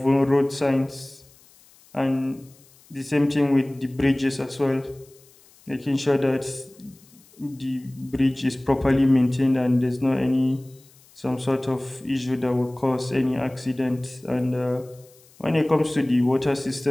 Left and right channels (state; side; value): noise; left; hiss, 28 dB below the sound